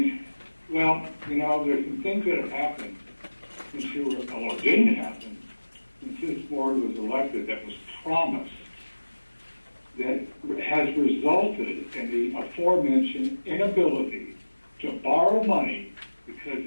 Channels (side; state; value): both; inverted; correlation -1.00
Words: well, you know, there's some things that have happened since you were, or didn't happen, since this board was elected that was promised, that has resulted in the aforementioned inability to borrow money because